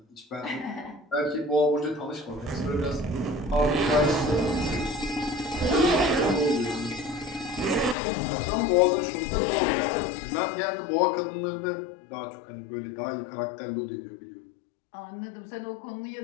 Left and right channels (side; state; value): right; drops out; at 8.0 s